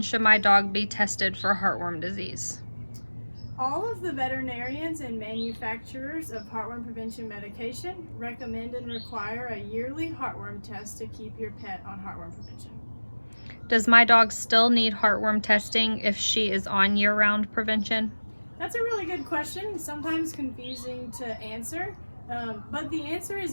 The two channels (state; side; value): inverted; both; correlation -1.00